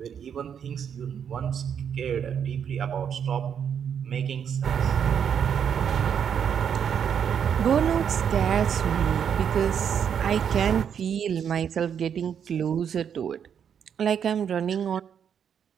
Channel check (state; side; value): quieter; left; 8.0 dB